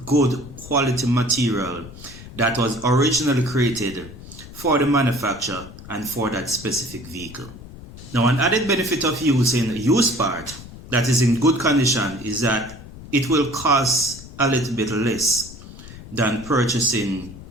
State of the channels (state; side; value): noise; left; rumble, 16 dB below the sound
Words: good quality material that was originally created for the manufacturer and for that specific vehicle. Now, an added benefit of using a used part that is in good condition is that it will cost a little bit less than purchasing